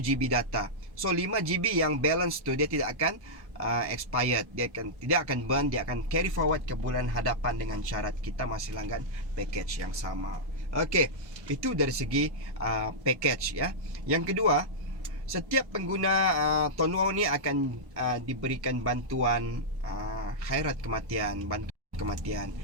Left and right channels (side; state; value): left; late; 1.1 ms